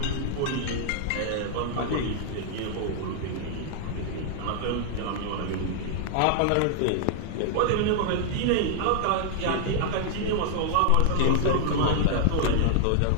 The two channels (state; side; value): different; both; correlation -0.01